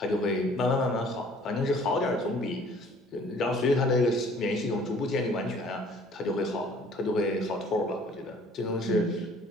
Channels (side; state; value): both; normal; correlation 0.54